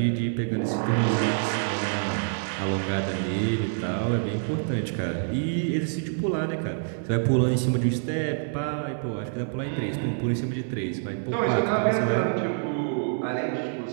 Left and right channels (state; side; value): silent; left; digital silence